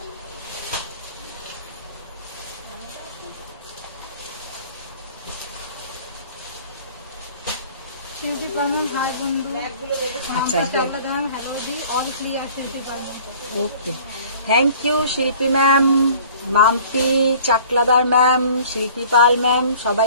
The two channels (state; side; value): inverted; both; correlation -0.50